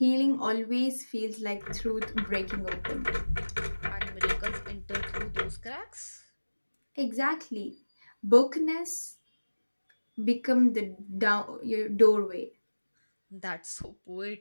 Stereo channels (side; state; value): both; inverted; correlation -1.00